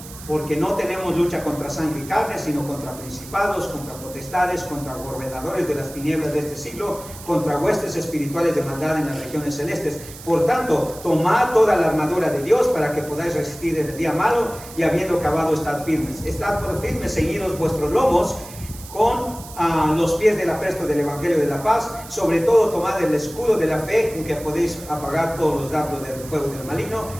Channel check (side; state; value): right; noise; hiss, 16 dB below the sound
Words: porque no tenemos lucha contra sangre y carne, sino contra principados, contra potestades, contra gobernadores de las tinieblas de este siglo, contra huestes espirituales de maldad en las regiones celestes. Por tanto, tomad toda la armadura de Dios para que podáis resistir en el día malo, y habiendo acabado, estad firmes. Estad por firmes, ceñidos vuestros lomos con los pies del apresto del Evangelio de la paz. Sobre todo tomad el escudo de la fe, con que podéis apagar todos los dardos del fuego del maligno,